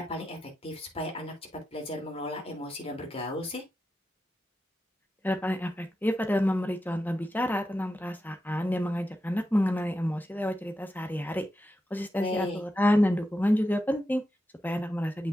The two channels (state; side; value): normal; both; correlation 0.89